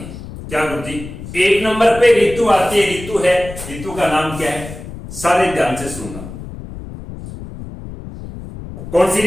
क्या गुरुजी, 1 नंबर पे ऋतु आती है। ऋतु है, ऋतु का नाम क्या है, सारे ध्यान से सुनना। कौन सी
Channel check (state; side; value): noise; left; rumble, 12 dB below the sound